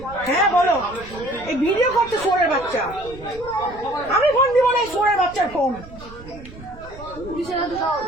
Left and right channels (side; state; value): right; noise; rumble, 18 dB below the sound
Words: হ্যাঁ বলো। এই ভিডিও করছে সোরের বাচ্চা, আমি ফোন দিব না এই সোরের বাচ্চার ফোন। পুলিশের হাতে দেওয়া